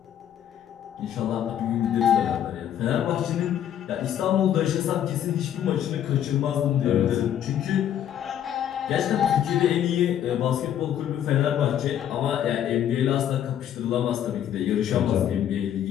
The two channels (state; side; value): quieter; right; 10.3 dB